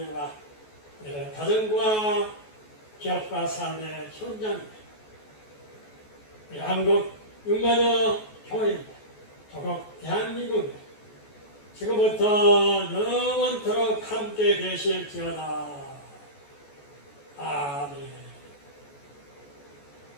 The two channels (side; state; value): right; late; 14 ms